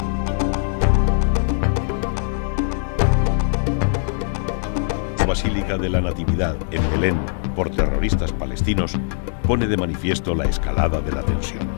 La Basílica de la Natividad en Belén por terroristas palestinos pone de manifiesto la escalada de la tensión.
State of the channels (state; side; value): silent; right; digital silence